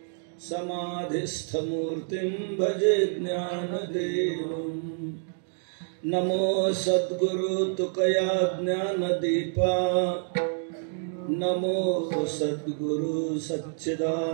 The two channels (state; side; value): silent; left; digital silence